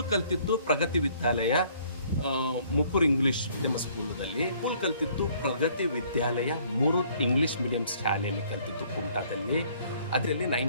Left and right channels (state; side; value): inverted; both; correlation -0.61